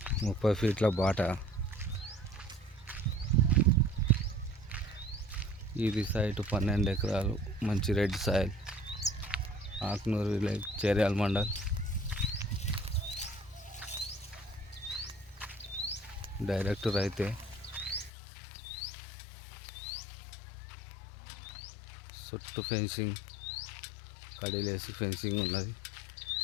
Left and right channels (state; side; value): drops out; right; at 18.1 s